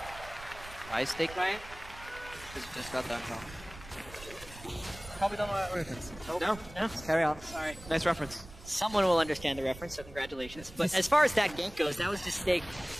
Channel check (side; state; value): right; noise; rumble, 17 dB below the sound